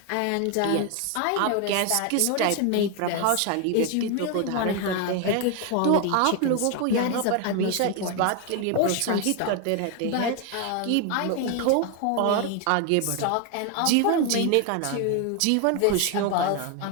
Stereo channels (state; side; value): different; both; correlation 0.01